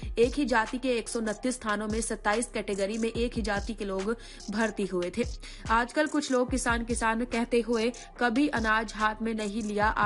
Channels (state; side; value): identical; both; correlation 1.00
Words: एक ही जाति के 129 स्थानों में 27 कैटेगरी में एक ही जाति के लोग भर्ती हुए थे। आजकल कुछ लोग किसान किसान कहते हुए कभी अनाज हाथ में नहीं लिया,